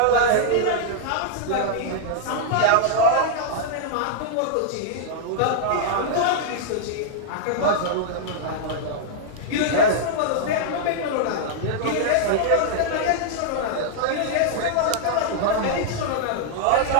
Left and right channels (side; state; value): both; different; correlation -0.01